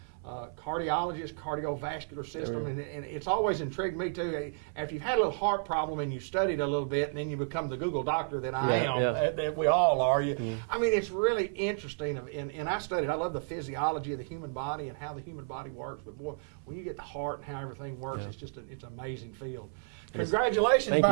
cardiologist, cardiovascular system, and it's always intrigued me too. After you've had a little heart problem and you studied a little bit, and then you become the Google doctor that I am, that we all are. I mean, it's really interesting, and I studied. I love the physiology of the human body and how the human body works. But boy, when you get the heart and how everything works, it's just it's an amazing field. Congratulations,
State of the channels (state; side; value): silent; left; 56 dB below the other